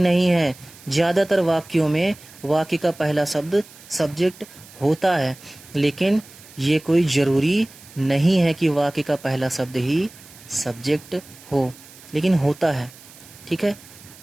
है। ज्यादातर वाक्यों में वाक्य का पहला शब्द सब्जेक्ट होता है, लेकिन ये कोई जरूरी नहीं है कि वाक्य का पहला शब्द ही सब्जेक्ट हो, लेकिन होता है, ठीक है।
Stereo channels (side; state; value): right; noise; hiss, 21 dB below the sound